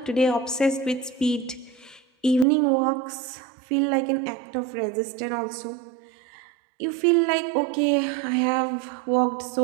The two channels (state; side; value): drops out; left; at 2.5 s